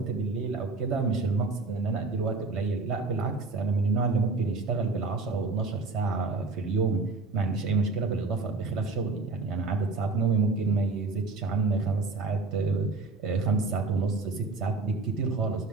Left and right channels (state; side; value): quieter; left; 3.7 dB